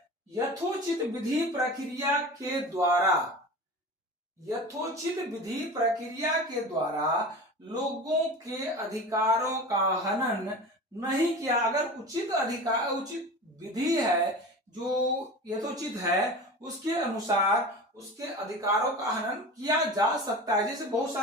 यथोचित विधि प्रक्रिया के द्वारा, यथोचित विधि प्रक्रिया के द्वारा लोगों के अधिकारों का हनन नहीं किया। अगर उचित विधि है जो यथोचित है, उसके अनुसार उसके अधिकारों का हनन किया जा सकता है। जैसे बहुत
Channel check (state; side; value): normal; both; correlation 0.33